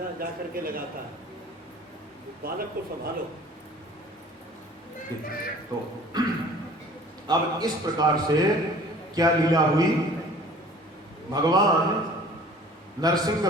जा करके लगाता है, बालक को संभालो। तो अब इस प्रकार से क्या लीला हुई, भगवान नरसिंह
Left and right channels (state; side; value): normal; both; correlation 0.48